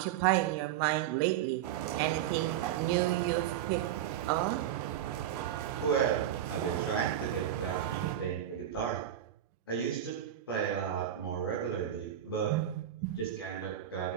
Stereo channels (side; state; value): left; quieter; 11.0 dB